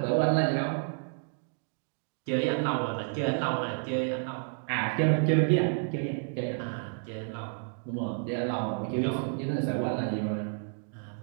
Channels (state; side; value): silent; left; 58 dB below the other